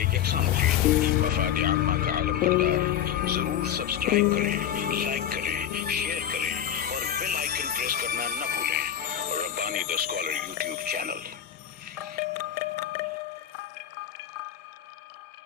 یکساں مفید. مفاد عامہ کا عالم بردار. ضرور سبسکرائب کریں، لائک کریں، شیئر کریں اور بیل آئیکن پریس کرنا نہ بھولیں. ربانی دا اسکالر یوٹیوب چینل.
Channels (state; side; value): quieter; right; 10.0 dB